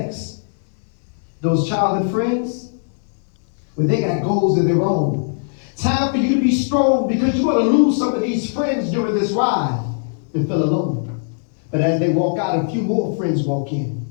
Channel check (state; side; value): silent; right; digital silence